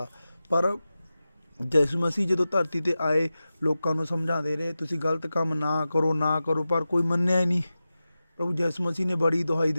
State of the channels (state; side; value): inverted; both; correlation -0.94